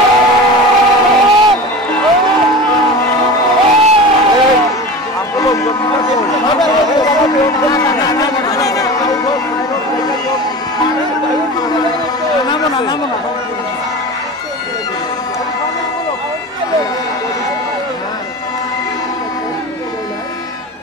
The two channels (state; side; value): normal; both; correlation 0.32